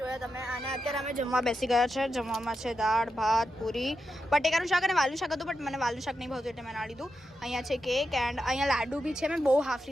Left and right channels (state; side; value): normal; both; correlation 0.87